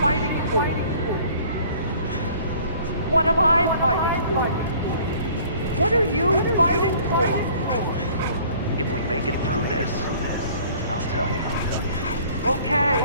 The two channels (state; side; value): inverted; both; correlation -0.52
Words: fighting for? What am I fighting for? What are you fighting for? If we make it through this, I'll tell you. Okay.